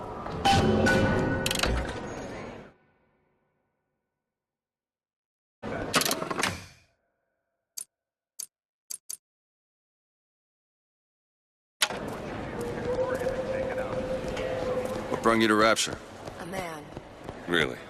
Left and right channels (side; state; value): both; identical; correlation 1.00